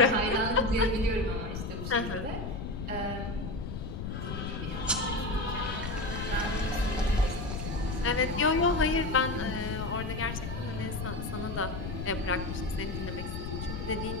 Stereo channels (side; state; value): left; noise; rumble, 5 dB below the sound